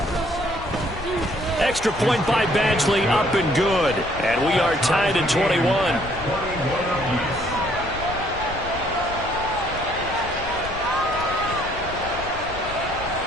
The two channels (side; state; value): left; noise; rumble, 13 dB below the sound